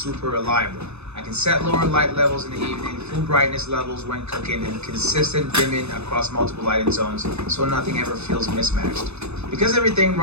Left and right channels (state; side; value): late; left; 0.80 ms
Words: reliable. I can set lower light levels in the evening, full brightness levels when cooking, and consistent dimming across multiple lighting zones so nothing ever feels mismatched. Because everything